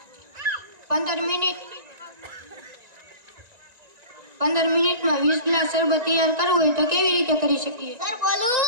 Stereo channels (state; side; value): late; left; 1.9 ms